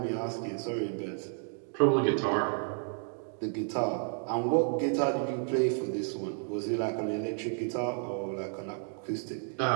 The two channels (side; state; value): left; silent; 57 dB below the other